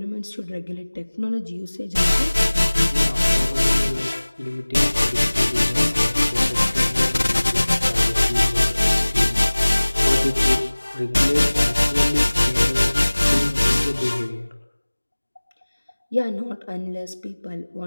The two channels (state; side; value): inverted; both; correlation -1.00